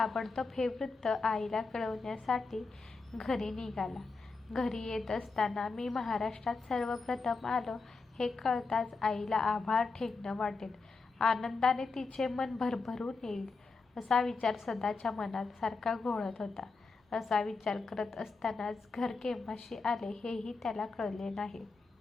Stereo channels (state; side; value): quieter; right; 4.1 dB